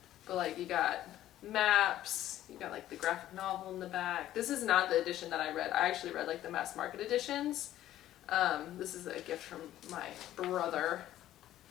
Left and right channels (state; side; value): quieter; right; 13.2 dB